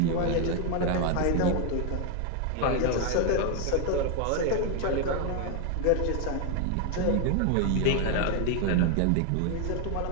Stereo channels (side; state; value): both; different; correlation 0.01